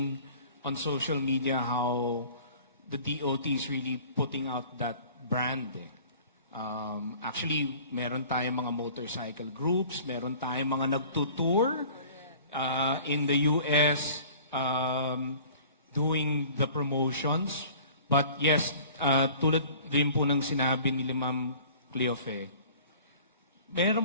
on social media how the DOT is really putting out that brand. Actually, meron tayong mga motorcycle groups, meron tayong mga nagtutour in the US doing the promotions. But yes, tulad rin po ng sinabi ni Ma'am Cleofe,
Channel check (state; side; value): inverted; both; correlation -0.48